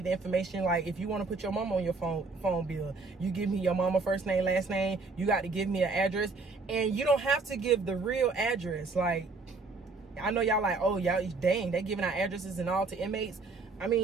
the information. Like, if you want to put your mama on your phone bill, you give me your mama first name, last name. You got to give me an address, and you don't have to give the real address. Like, I know y'all like, oh, y'all, dang, they giving out addresses and all to inmates. I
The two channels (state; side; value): quieter; left; 3.8 dB